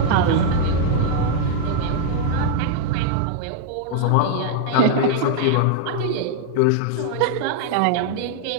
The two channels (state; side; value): different; both; correlation 0.00